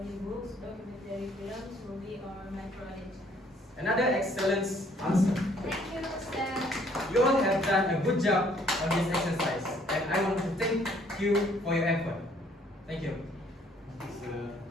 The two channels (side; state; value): both; normal; correlation 0.62